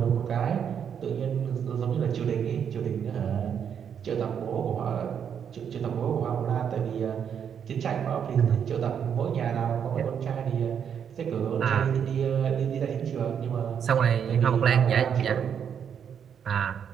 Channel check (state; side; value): quieter; left; 7.9 dB